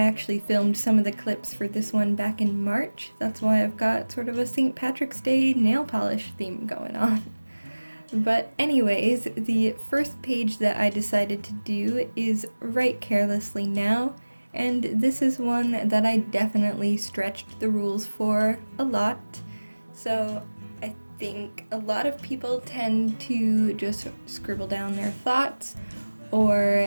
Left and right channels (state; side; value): inverted; both; correlation -1.00